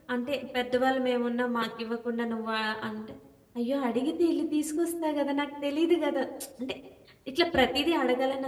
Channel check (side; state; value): both; identical; correlation 1.00